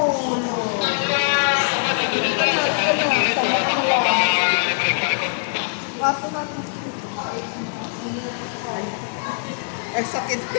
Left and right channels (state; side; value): silent; right; digital silence